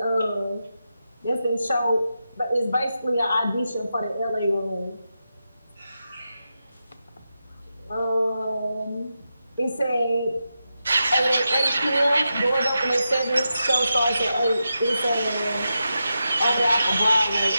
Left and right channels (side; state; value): both; inverted; correlation -0.88